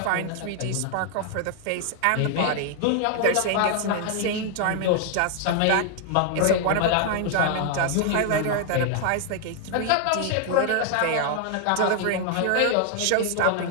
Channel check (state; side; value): different; both; correlation 0.00